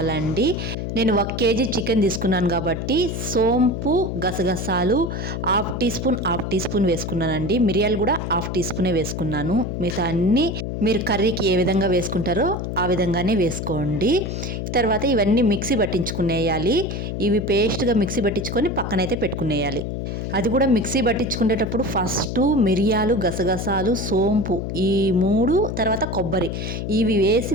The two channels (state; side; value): noise; left; hum, 4 dB below the sound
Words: నేను 1 కేజీ చికెన్ తీసుకున్నాను కాబట్టి సోంపు, గసగసాలు హాఫ్ టీ స్పూన్ వేసుకున్నానండి. మిరియాలు కూడా హాఫ్ టీ స్పూనే వేసుకున్నాను. మిగతా అన్నీ మీరు కర్రీకి ఏ విధంగా వేసుకుంటారో ఆ విధంగానే వేసుకోండి. తర్వాత ఇవన్నీ మిక్సీ పట్టించుకునేయాలి. ఇవి పేస్ట్గా మిక్సీ పట్టించుకొని పక్కనైతే పెట్టుకునేయాలి. అది కూడా మిక్సీ పట్టించుకునేటప్పుడు ఫస్ట్ మిరియాలు, గసగసాలు, సోంపు ఈ 3 తర్వాత కొబ్బరి ఇవి వేసి